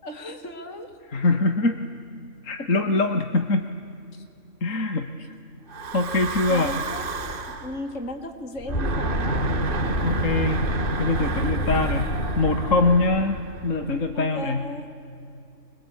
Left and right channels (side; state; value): right; late; 2.6 ms